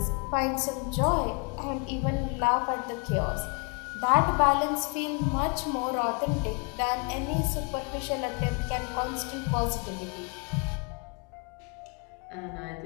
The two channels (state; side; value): quieter; right; 35.0 dB